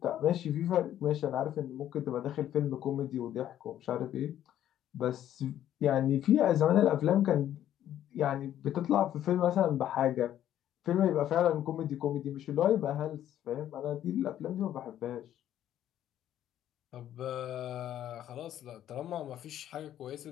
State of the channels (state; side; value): quieter; right; 11.5 dB